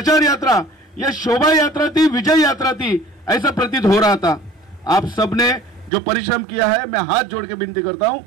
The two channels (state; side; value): drops out; left; at 5.9 s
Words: यात्रा ये शोभा यात्रा थी, विजय यात्रा थी, ऐसा प्रतीत हो रहा था. आप सबने जो परिश्रम किया है, मैं हाथ जोड़ के विनती करता हूं,